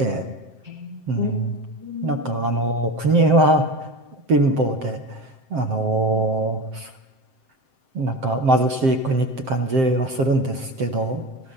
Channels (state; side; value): late; left; 7.7 ms